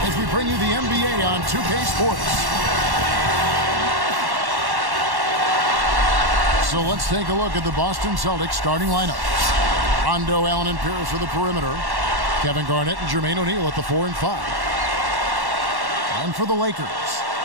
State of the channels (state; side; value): late; left; 1.1 ms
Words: as we bring you the NBA on 2K Sports. So let's take a look at the Boston Celtics starting lineup. Rondo, Allen, and Pierce for the perimeter. Kevin Garnett and Jermaine O'Neal at the 4 and 5. And for the Lakers,